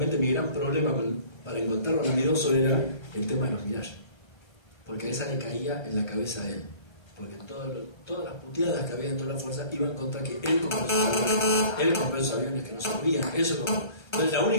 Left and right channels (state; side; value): late; right; 1.3 ms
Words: mi gran problema para encontrarlo a Lamidoso era el tema de los Mirage, porque a esa le caía en la cabeza a él, porque todas las puteadas que había dentro de la fuerza iban contra que él compró esos aviones que no servían. Entonces la